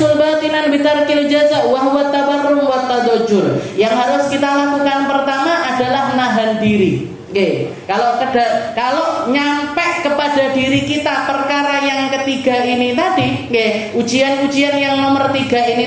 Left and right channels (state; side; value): identical; both; correlation 1.00